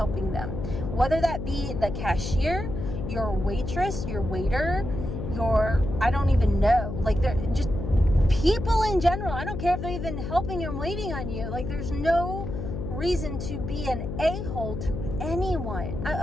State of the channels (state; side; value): noise; left; hum, 5 dB below the sound